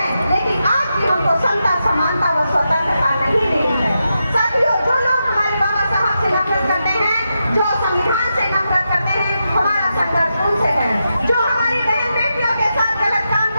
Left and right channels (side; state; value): both; inverted; correlation -0.87